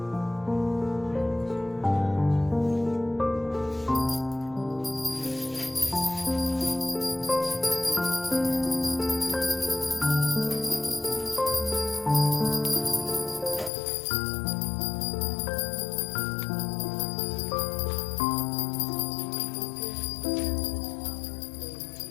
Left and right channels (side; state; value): right; drops out; at 13.7 s